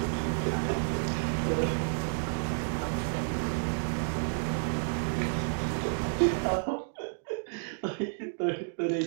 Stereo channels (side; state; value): left; silent; digital silence